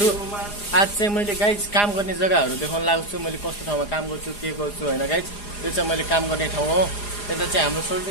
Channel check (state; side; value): late; right; 4.9 ms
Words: आज चाहिँ मैले गाइज काम गर्ने जग्गाहरू देखाउन लागेको छु। मैले कस्तो ठाउँमा काम गर्छु के गर्छु हैन गाइज। त्यो चाहिँ मैले काम गर्ने ठाउँ हो। यता चाहिँ हाम्रो